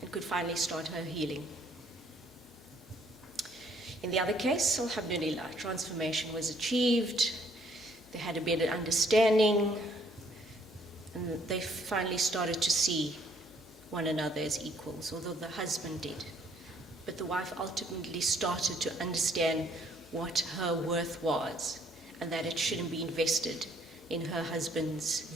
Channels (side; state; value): left; noise; hum, 27 dB below the sound